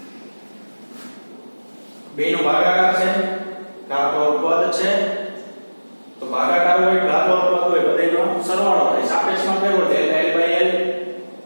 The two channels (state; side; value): inverted; both; correlation -1.00